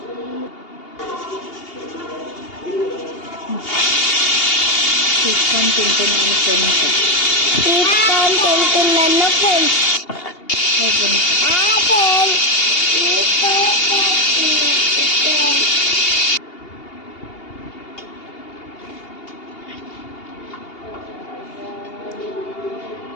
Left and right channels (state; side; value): late; right; 2.8 ms